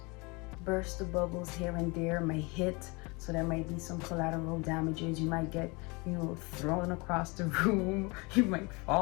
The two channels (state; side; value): quieter; right; 27.8 dB